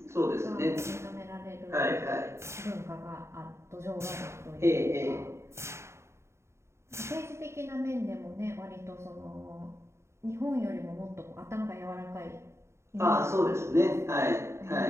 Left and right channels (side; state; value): left; late; 0.13 ms